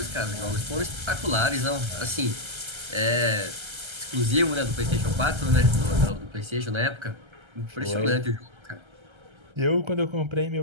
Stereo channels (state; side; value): late; left; 1.3 ms